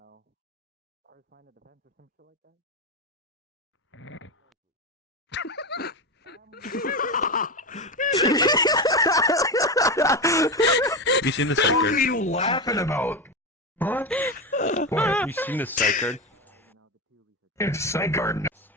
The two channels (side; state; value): both; normal; correlation 0.17